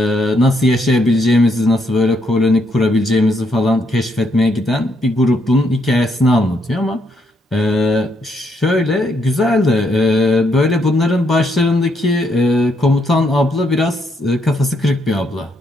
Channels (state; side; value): normal; both; correlation 0.75